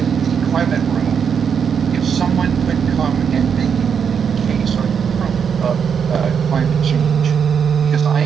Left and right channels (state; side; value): quieter; left; 7.0 dB